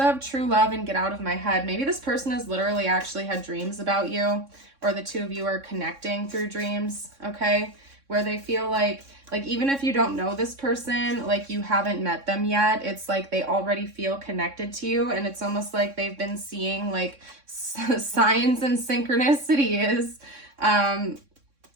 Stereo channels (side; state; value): left; late; 3.6 ms